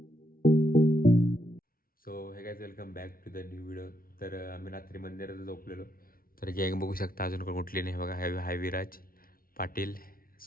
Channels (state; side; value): late; right; 0.43 ms